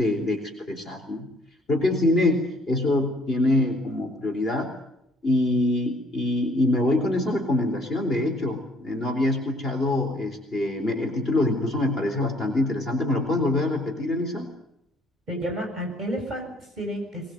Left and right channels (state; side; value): normal; both; correlation 0.61